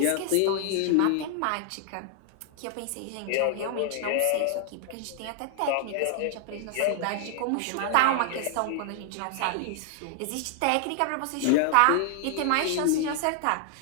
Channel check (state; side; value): different; both; correlation 0.00